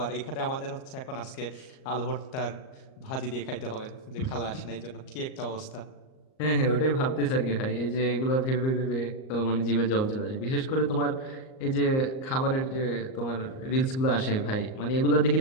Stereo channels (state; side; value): late; right; 38 ms